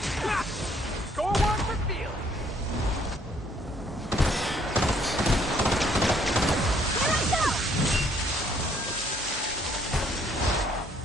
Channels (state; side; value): normal; both; correlation 0.64